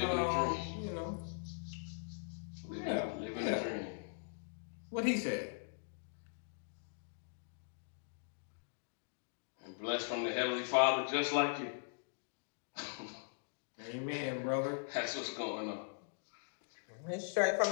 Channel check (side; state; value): right; silent; digital silence